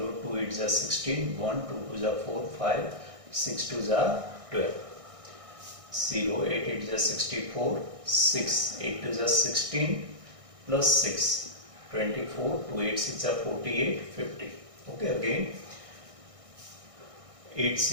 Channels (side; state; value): left; late; 1.6 ms